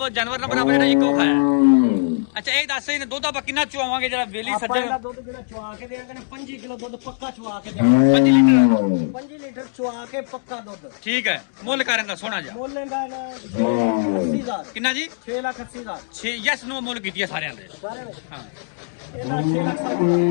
ਜਾਨਵਰ ਨਾ ਬਣਾ ਬਣਾ ਇੱਕੋ ਖਾਇਆ। ਅੱਛਾ ਇਹ ਦੱਸ ਇਹਨੇ ਦੁੱਧ ਆਪਾਂ ਕਿੰਨਾ ਚੁਆਵਾਂਗੇ ਜਿਹੜਾ ਵੇਲੀ ਆਪਾਂ ਸੱਜਣ? ਇਹਦਾ ਦੁੱਧ ਜਿਹੜਾ ਚੁਆ ਕੇ ਦੇਾਂਗੇ 5 ਕਿਲੋ ਦੁੱਧ ਪੱਕਾ ਚੁਆ ਕੇ ਦੇਾਂਗੇ। 5 ਲੀਟਰ 5 ਲੀਟਰ ਚੁਆ ਕੇ ਪੱਕਾ ਦੁੱਧ। ਠੀਕ ਹੈ ਮੁੱਲ ਕਰਨ ਦਾ ਸੋਹਣਾ ਜਾ ਮੁੱਲ ਇਹਦਾ 80,000 ਕਿੰਨਾ ਜੀ? 6,80,000 6 ਯੈਸ ਨੋ ਮੁੱਲ ਕੀਤੀ ਹੈ ਸਾਰਿਆਂ ਦੇ। ਸਾਰੇ ਵਿੱਚ ਹਾਂ ਇਹਦਾ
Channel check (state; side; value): silent; right; digital silence